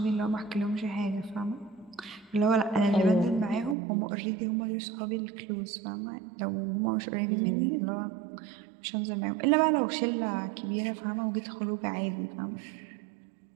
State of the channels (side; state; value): left; drops out; at 3.8 s